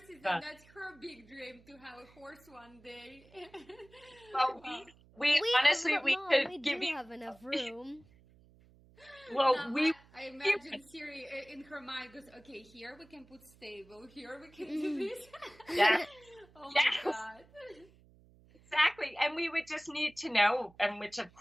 and that's her big dream to have a horse one day. Wow. We honestly, we could give you have enough room. Well, now, I imagine Siri in her mind goes, okay, here we can put stable, here we can do this. Yeah. Oh my God. Exactly. And we would just need to know, and which of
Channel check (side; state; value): right; noise; hum, 27 dB below the sound